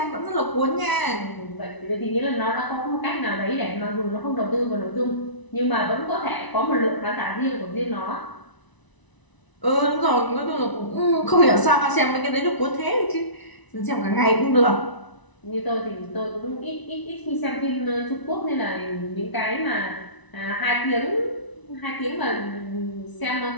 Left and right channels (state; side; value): late; right; 1.0 ms